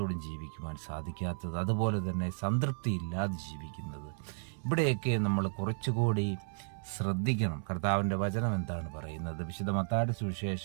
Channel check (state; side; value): silent; left; 55 dB below the other